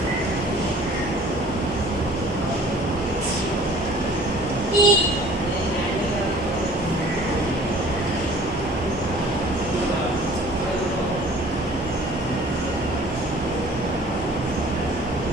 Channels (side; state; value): both; normal; correlation 0.50